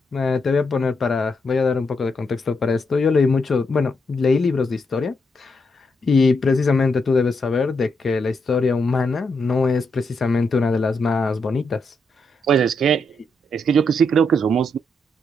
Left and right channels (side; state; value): both; normal; correlation 0.80